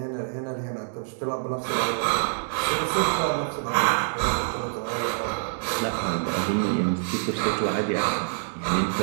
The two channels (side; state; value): left; silent; digital silence